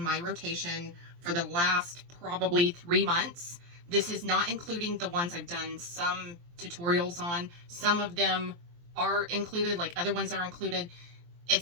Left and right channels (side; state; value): left; late; 23 ms